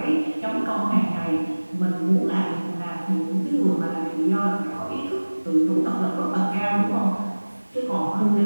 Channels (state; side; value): inverted; both; correlation -1.00